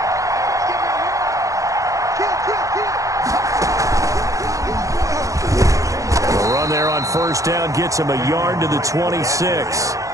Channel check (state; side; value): late; left; 0.16 ms